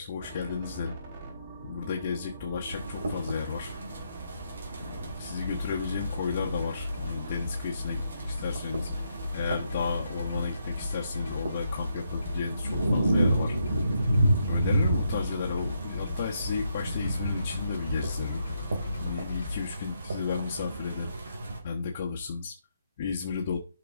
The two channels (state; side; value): inverted; both; correlation -0.78